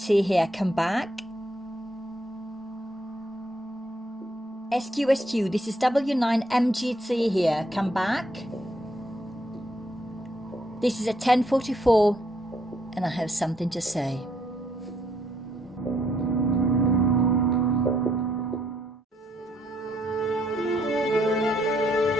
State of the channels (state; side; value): normal; both; correlation 0.72